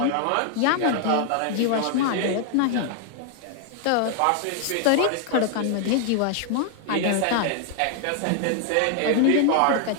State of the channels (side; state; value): both; different; correlation 0.00